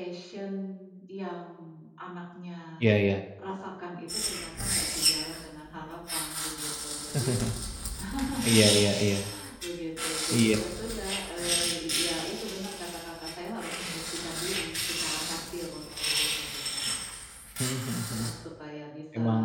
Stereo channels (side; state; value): both; identical; correlation 1.00